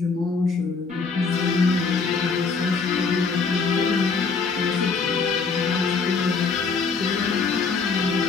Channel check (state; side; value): quieter; right; 4.8 dB